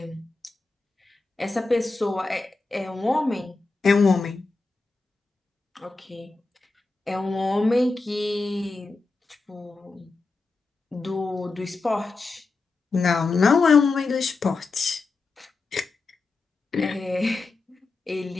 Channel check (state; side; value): quieter; right; 3.7 dB